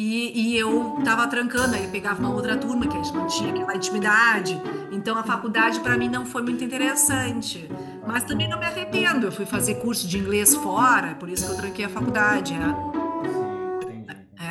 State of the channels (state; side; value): identical; both; correlation 1.00